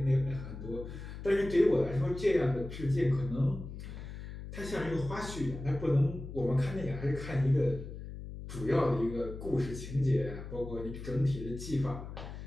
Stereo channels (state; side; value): noise; left; hum, 10 dB below the sound